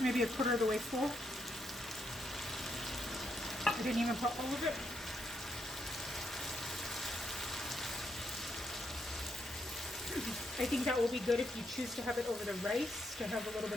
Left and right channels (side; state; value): both; normal; correlation 0.79